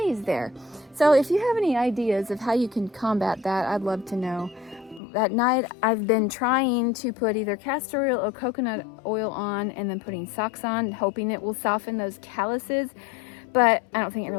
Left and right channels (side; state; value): right; drops out; at 5.0 s